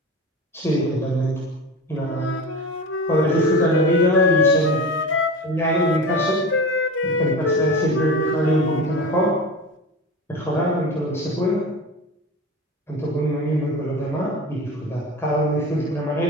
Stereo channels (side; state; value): both; normal; correlation 0.29